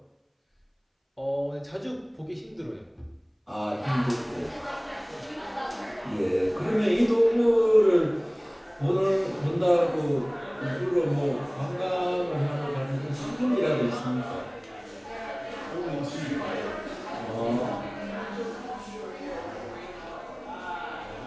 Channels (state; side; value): identical; both; correlation 1.00